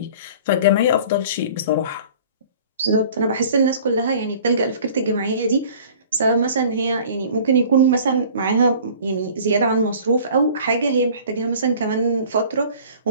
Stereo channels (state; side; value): inverted; both; correlation -0.47